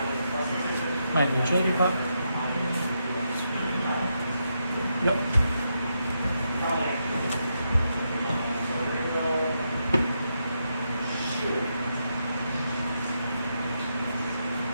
Might be utility pop. Yep.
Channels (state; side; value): inverted; both; correlation -0.83